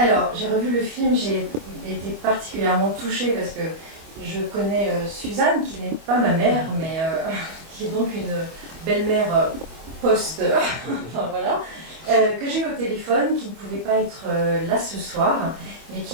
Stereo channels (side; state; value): left; late; 25 ms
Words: j'ai revu le film, j'ai été particulièrement touchée parce que je connais Suzanne, qui n'est pas ma mère, mais qui est donc une belle-mère post, enfin voilà, que j'ai eu au téléphone, qui ne pouvait pas être là ce soir, mais